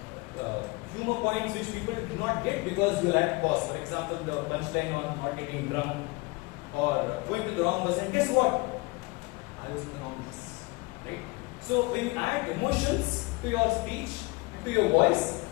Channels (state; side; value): quieter; right; 25.2 dB